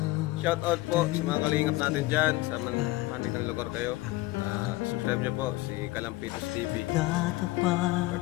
Shout out po sa mga kalingap natin dyan sa manig ng lugar kayo. Subscribe niyo po si Kalampitos TV.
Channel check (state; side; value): quieter; right; 19.5 dB